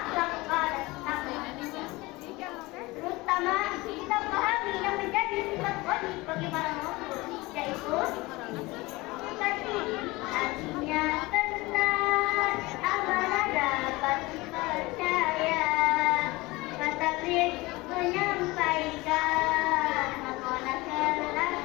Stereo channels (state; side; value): quieter; right; 21.9 dB